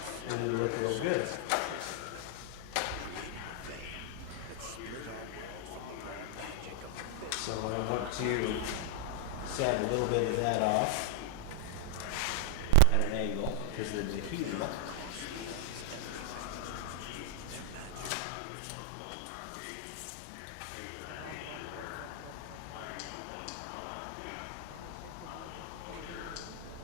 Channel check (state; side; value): different; both; correlation 0.00